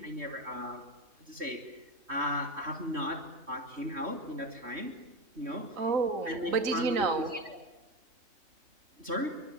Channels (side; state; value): left; late; 3.2 ms